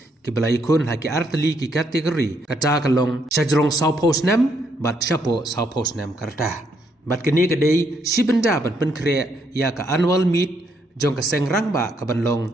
ki balai kun haki artli ki kategori kata kalong Shajrong South Post Nem bat Shapo South Post Nem karta bat kini kadai shibenda ban penkre ya ka annual meet jong ka Sengrangba ka banlong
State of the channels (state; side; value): normal; both; correlation 0.74